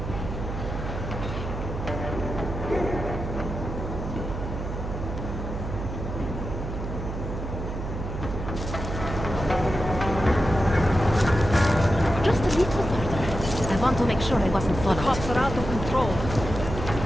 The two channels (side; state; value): right; noise; hum, 6 dB below the sound